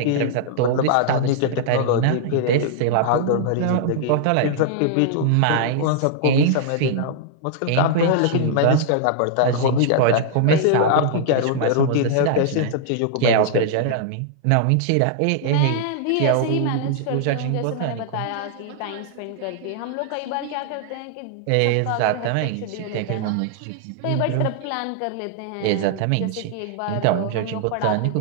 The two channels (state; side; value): different; both; correlation -0.01